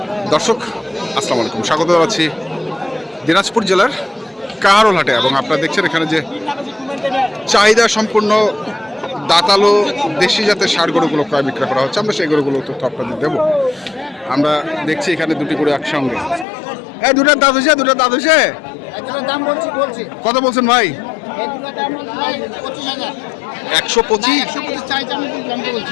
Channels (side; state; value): right; drops out; at 16.4 s